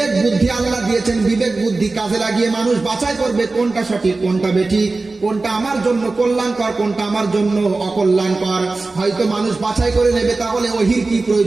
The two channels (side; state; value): left; quieter; 3.5 dB